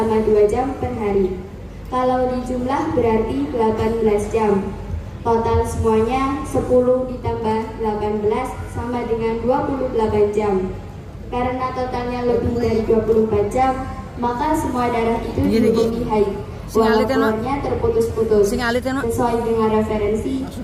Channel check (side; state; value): both; identical; correlation 1.00